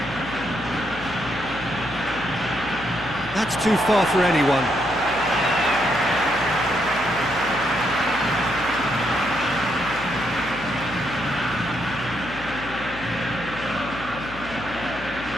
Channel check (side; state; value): left; noise; hum, 15 dB below the sound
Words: That's too far for anyone.